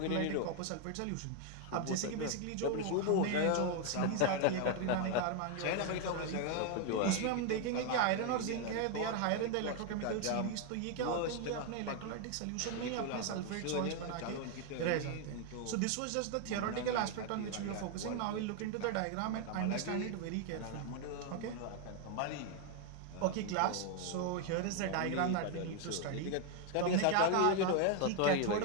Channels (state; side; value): different; both; correlation 0.00